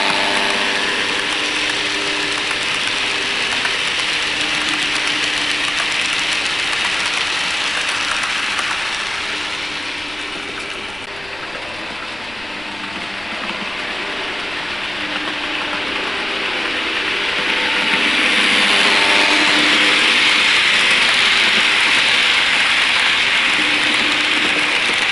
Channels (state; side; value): noise; left; rumble, 22 dB below the sound